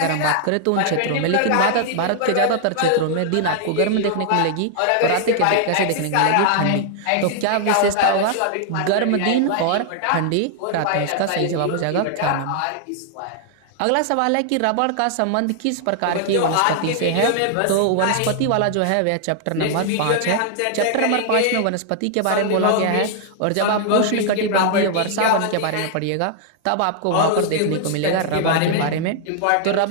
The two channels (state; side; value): different; both; correlation 0.00